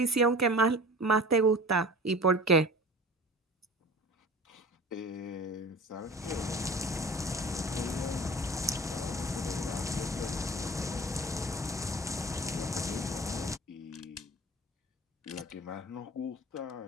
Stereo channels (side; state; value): both; normal; correlation 0.39